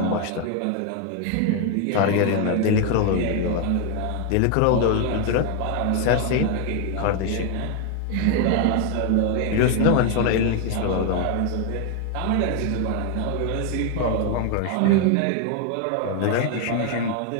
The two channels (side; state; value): both; different; correlation 0.01